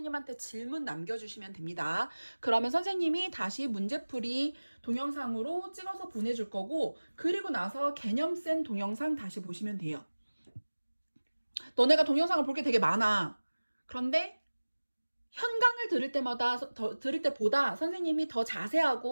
질문 남겨주시면 됩니다. 그러면 선생님이 다시 문제풀이 동영상으로 찍어서 보내줄 거고, 그리고 나서 개념센 동영상 다시 보시면 돼요. 너네가 동영상을 볼 게 되게 많아. 그런데 현강을 들을 때보다 선생님이 더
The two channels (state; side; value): inverted; both; correlation -1.00